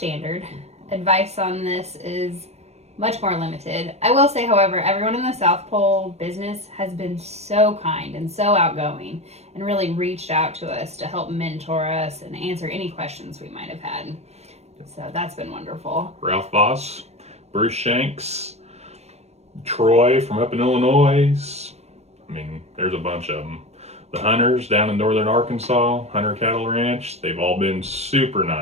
Advice on this is much more limited. I will say, however, everyone in the South Pole business has been so kind and so outgoing and really reached out to us to help mentor us and answer any questions we might have had. So that's been wonderful. Ralph Voss, Bruce Shanks, Troy from up in Illinois. I mean, there's a bunch of them. The Hunters down in northern Arkansas, Hunter Cattle Ranch, they've all been super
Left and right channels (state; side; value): late; left; 0.31 ms